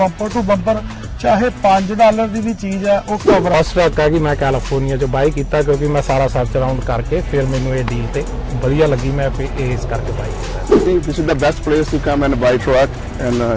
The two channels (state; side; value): identical; both; correlation 1.00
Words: ਟੂ ਬੰਪਰ ਚਾਹੇ $5 ਦੀ ਵੀ ਚੀਜ਼ ਆ ਉਹ ਕਵਰ ਫਸਟ ਟਰੱਕ ਹੈ ਕਿ ਮੈਂ ਕੈਲੀਫੋਰਨੀਆ ਚ ਬਾਈ ਕੀਤਾ ਕਿਉਂਕਿ ਮੈਂ ਸਾਰਾ ਸਰਚ ਅਰਾਊਂਡ ਕਰਕੇ ਫਿਰ ਮੈਨੂੰ ਇਹ ਡੀਲ ਤੇ ਵਧੀਆ ਲੱਗੀ ਮੈਂ ਇਸ ਕਰਕੇ ਬਾਈ ਕੀਤਾ I think this is the best place to come and buy truck and